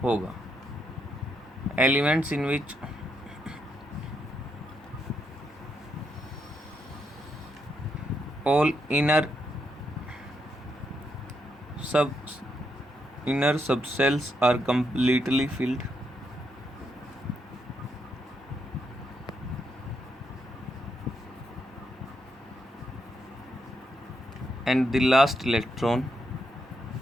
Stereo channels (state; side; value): normal; both; correlation 0.79